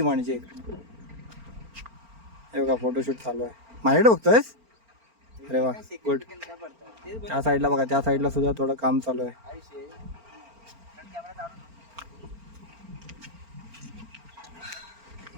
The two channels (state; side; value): late; left; 4.4 ms